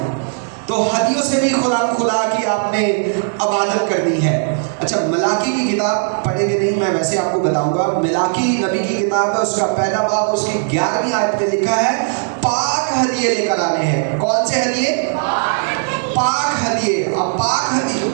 तो हदियों से भी खुदा की आपने इबादत करनी है। अच्छा, मलाकी की किताब पढ़ेंगे नहीं, मैं वैसे आपको बताऊंगा। मलाकी नबी की किताब है, उसका पहला बाब उसकी 11वीं आयत में लिखा है पाक हदिये लेकर आने हैं। कौन से हदिये? पाक हदिये। अब पाक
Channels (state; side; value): silent; left; 64 dB below the other